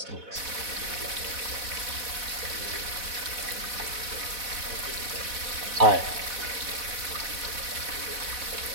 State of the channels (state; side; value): late; left; 4.1 ms